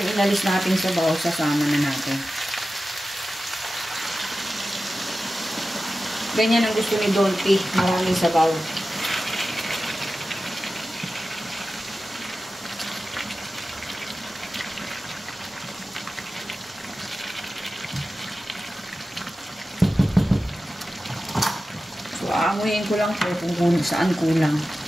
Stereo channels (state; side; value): normal; both; correlation 0.94